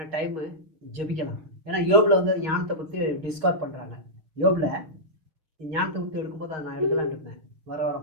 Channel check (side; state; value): left; late; 6.4 ms